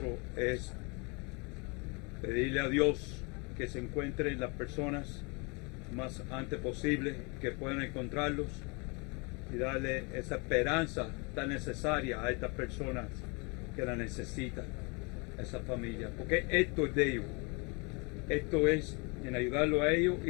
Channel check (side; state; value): right; quieter; 30.7 dB